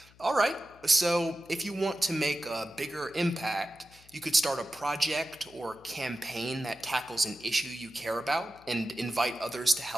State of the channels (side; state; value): left; noise; hum, 26 dB below the sound